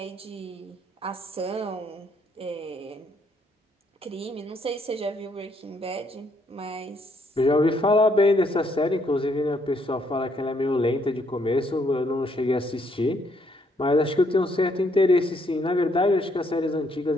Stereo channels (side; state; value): both; normal; correlation 0.70